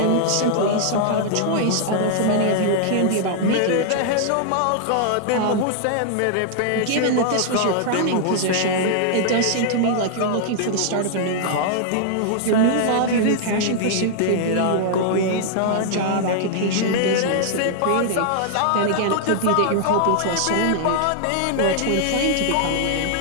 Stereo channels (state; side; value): different; both; correlation -0.01